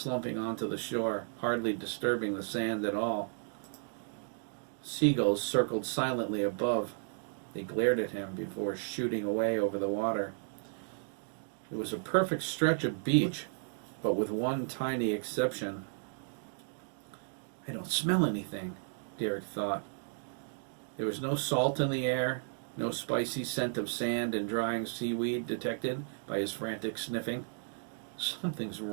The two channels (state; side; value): silent; left; digital silence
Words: onto the shore, hardly disturbing the sand at all. Seagulls circled silently above. They glared at him before shooting away over the water. It was a perfect stretch of beach, but with one tiny exception. I don't smell anything, Derek thought. There was no salt in the air, no spicy scent of sand and drying seaweed detected by his frantic sniffing. Something's